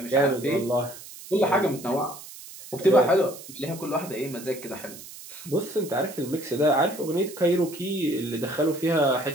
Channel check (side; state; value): right; noise; hiss, 15 dB below the sound